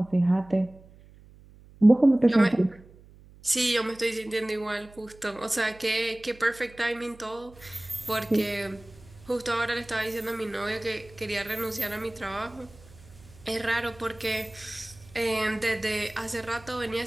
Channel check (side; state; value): right; noise; hum, 23 dB below the sound